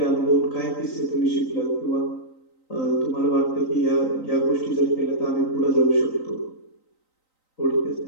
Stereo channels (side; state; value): right; late; 3.9 ms